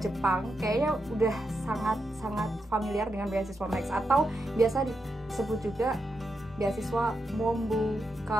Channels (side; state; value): both; normal; correlation 0.85